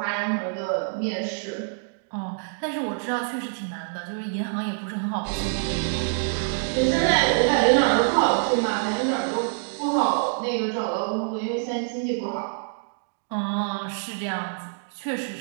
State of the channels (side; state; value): left; silent; digital silence